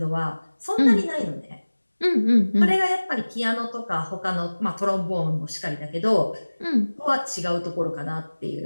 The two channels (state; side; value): inverted; both; correlation -1.00